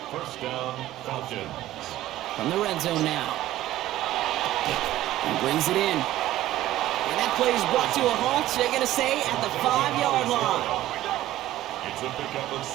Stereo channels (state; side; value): quieter; left; 14.6 dB